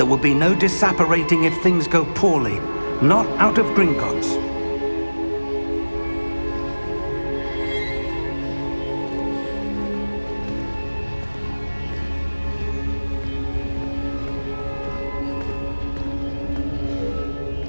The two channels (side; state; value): both; inverted; correlation -1.00